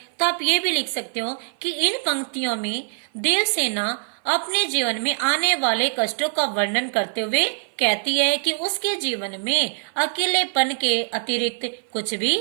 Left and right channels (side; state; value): left; silent; 56 dB below the other